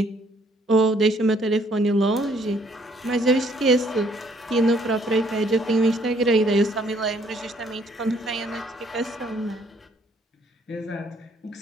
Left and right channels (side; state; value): both; normal; correlation 0.65